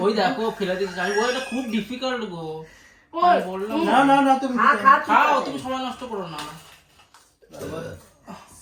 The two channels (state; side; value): identical; both; correlation 1.00